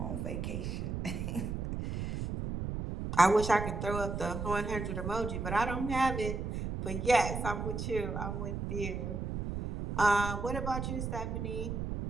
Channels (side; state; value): right; noise; rumble, 4 dB below the sound